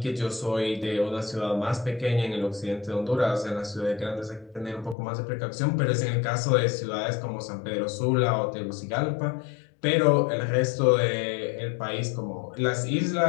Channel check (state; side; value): drops out; right; at 5.0 s